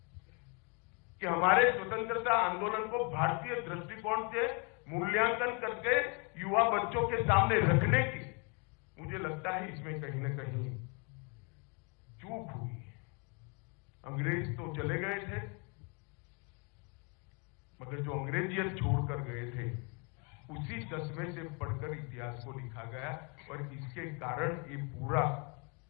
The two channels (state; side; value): quieter; right; 34.5 dB